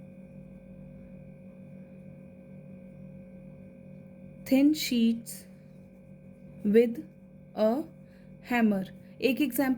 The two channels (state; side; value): identical; both; correlation 1.00